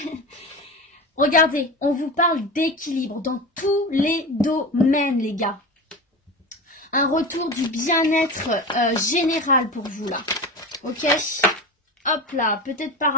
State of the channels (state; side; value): normal; both; correlation 0.27